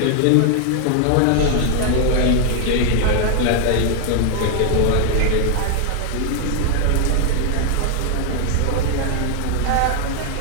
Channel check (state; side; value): different; both; correlation 0.00